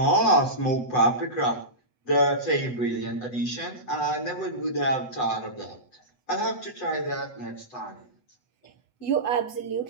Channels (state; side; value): late; right; 8.0 ms